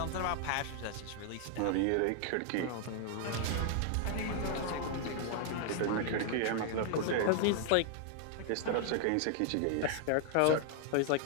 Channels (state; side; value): different; both; correlation 0.00